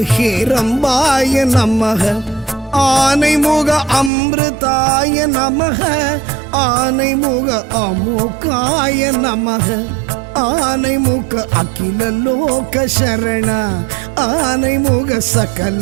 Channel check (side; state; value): left; drops out; at 4.1 s